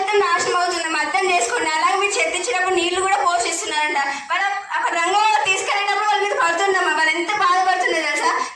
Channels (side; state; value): both; identical; correlation 1.00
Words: నాశనం అవుతుందమ్మా. అర్థం చేసుకోండి. అలాగే మీరు చెత్త ఇచ్చినప్పుడు నీళ్లు కూడా పోషిస్తున్నారంట. వాళ్ళు అక్కడ రంగంలో తీసుకెళ్ళినప్పుడు వాళ్ళ మీద పడుతుందమ్మా. వాళ్ళు ఎంత బాధపడుతున్నారు తెలుసా.